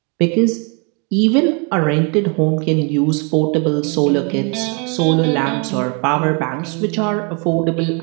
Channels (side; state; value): left; quieter; 34.6 dB